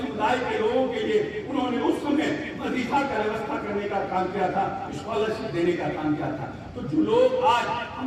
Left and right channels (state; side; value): identical; both; correlation 1.00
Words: के लोगों के लिए उन्होंने उस समय वजीफा का व्यवस्था करने का काम किया था, स्कॉलरशिप देने का काम किया था। तो जो लोग आज